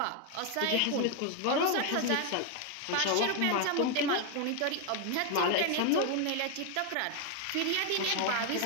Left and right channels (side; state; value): both; different; correlation 0.01